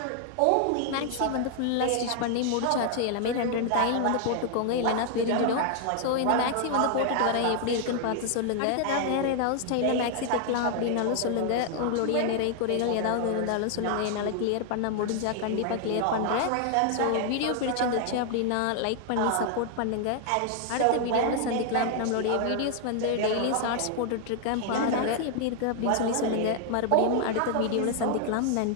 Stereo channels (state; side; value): different; both; correlation 0.00